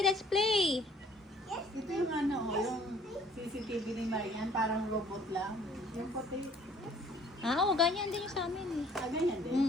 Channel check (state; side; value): normal; both; correlation 0.57